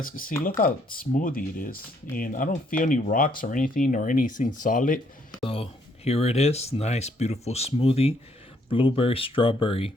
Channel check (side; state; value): both; normal; correlation 0.69